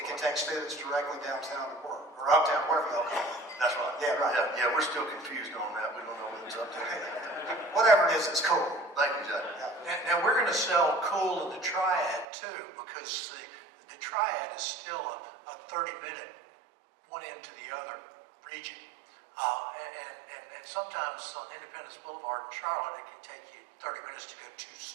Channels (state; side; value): drops out; left; at 12.2 s